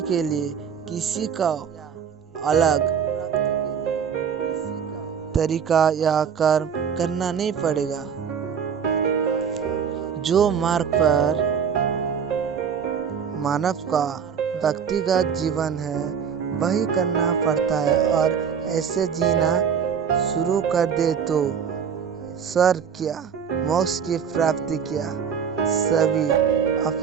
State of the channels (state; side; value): quieter; left; 7.2 dB